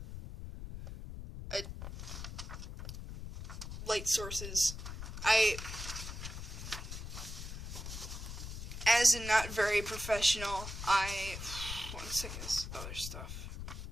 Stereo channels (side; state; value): left; noise; rumble, 8 dB below the sound